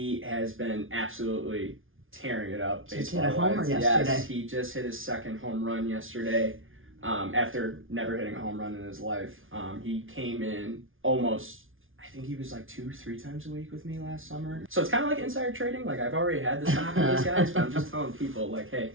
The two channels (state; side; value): late; left; 0.58 ms